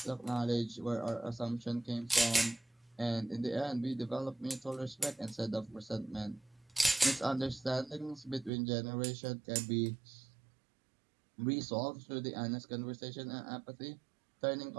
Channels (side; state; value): left; drops out; at 8.5 s